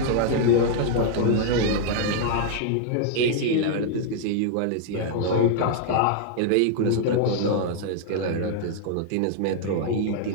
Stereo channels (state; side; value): different; both; correlation -0.01